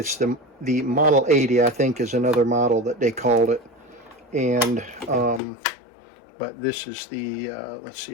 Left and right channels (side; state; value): right; drops out; at 5.4 s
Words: the Model 80, I think, is another model that they called it. And but this is the let's see